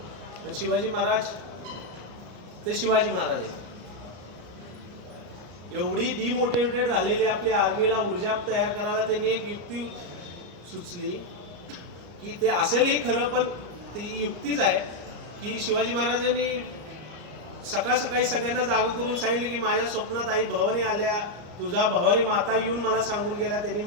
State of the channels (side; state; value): left; late; 34 ms